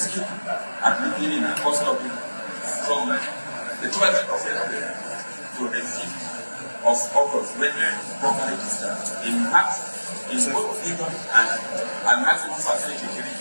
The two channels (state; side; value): inverted; both; correlation -1.00